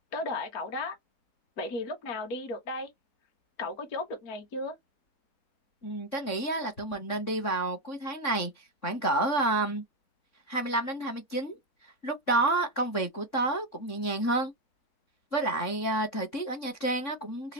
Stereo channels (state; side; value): late; right; 3.6 ms